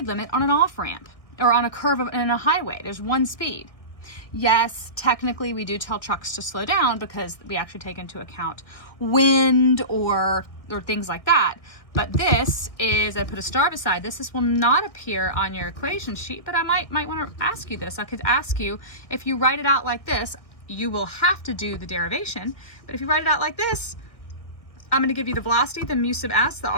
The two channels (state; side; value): late; right; 1.6 ms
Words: limit on an off-ramp or on a curve in a highway. There's one speed. Yes, technically we do tell trucks to slow down because we actually take into account wind or things like that. But this is, I put a star beside this. This will not appear on your equation sheet, but I might want to ask you this. I could ask you, if you write it out like this, you will have to do the derivation. But if you write it out like this, I'm going to give you the velocity, the mu sub s, the